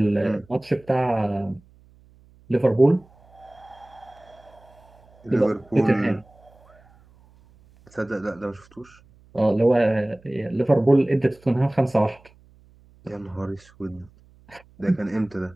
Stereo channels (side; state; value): right; noise; hum, 28 dB below the sound